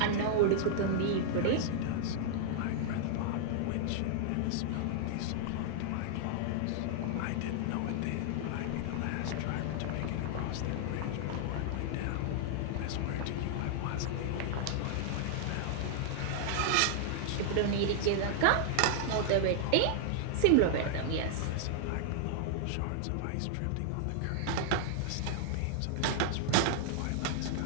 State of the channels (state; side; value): different; both; correlation -0.01